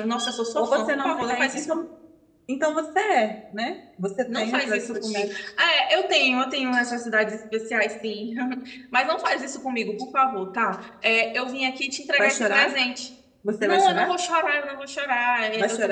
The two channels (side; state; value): both; identical; correlation 1.00